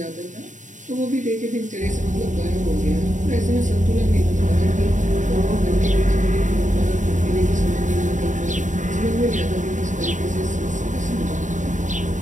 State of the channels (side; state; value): left; late; 0.36 ms